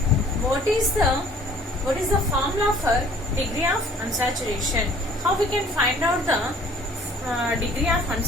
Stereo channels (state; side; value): normal; both; correlation 0.54